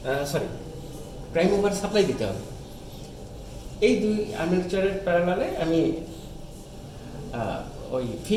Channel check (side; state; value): both; identical; correlation 1.00